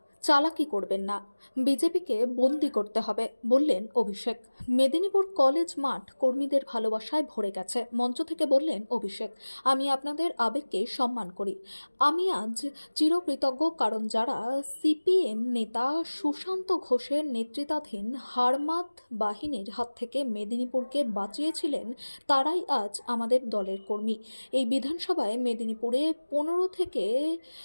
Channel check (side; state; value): both; inverted; correlation -1.00